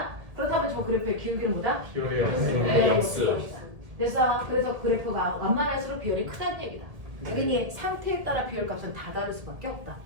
그렇다면 저 그래프의 기울기는 뭐다? 기울이요. 됐어. 그래서 그래프가 완만할수록 비율이 크다는 얘기다. 그러니 상태에 따라 비율값은 다 다를 수밖에 없다.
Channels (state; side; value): late; left; 1.7 ms